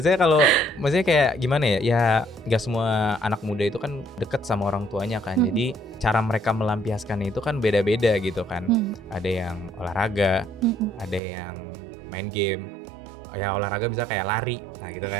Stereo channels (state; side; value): drops out; left; at 11.2 s